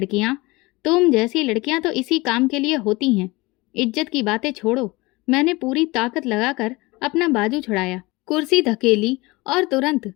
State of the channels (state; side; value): quieter; right; 22.9 dB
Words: तुम जैसी लड़कियां तो इसी काम के लिए होती हैं। इज्जत की बातें छोड़ो। मैंने पूरी ताकत लगाकर अपना बाजू छुड़ाया, कुर्सी धकेली और तुरंत